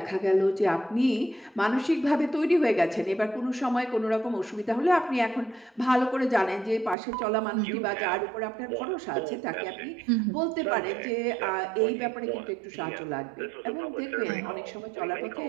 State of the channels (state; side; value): drops out; left; at 7.0 s